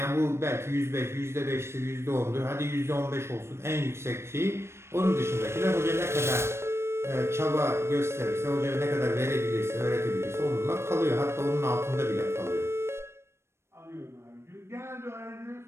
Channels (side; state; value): left; late; 0.13 ms